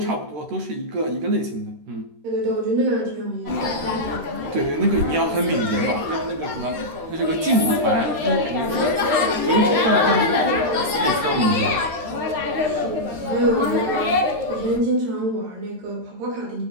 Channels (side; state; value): left; late; 13 ms